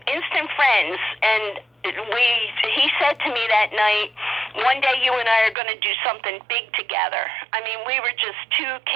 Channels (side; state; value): left; drops out; at 5.6 s